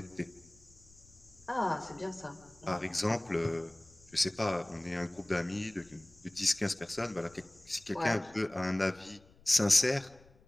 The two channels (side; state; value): left; noise; rumble, 27 dB below the sound